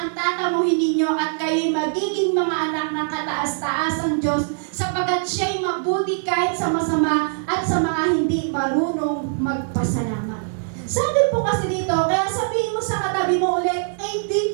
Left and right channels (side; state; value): left; silent; 63 dB below the other